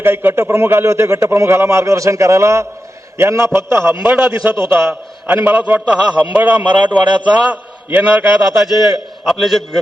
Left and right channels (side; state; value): both; normal; correlation 0.90